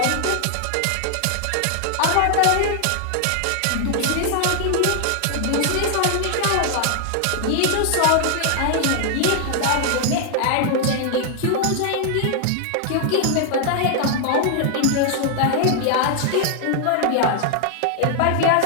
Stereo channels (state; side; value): different; both; correlation 0.00